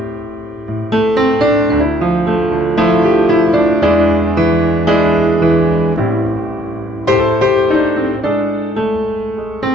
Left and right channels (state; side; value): normal; both; correlation 0.65